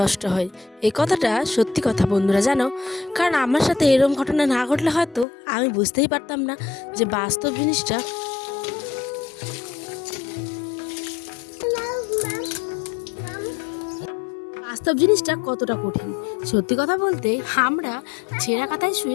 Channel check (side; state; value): right; drops out; at 5.2 s